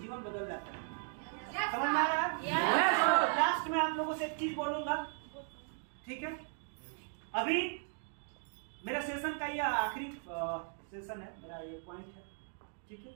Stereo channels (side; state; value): left; silent; 53 dB below the other